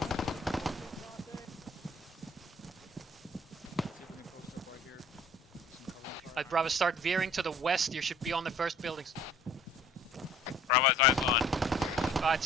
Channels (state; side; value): normal; both; correlation 0.52